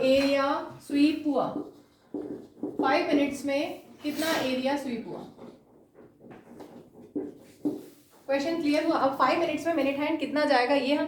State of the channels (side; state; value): both; identical; correlation 1.00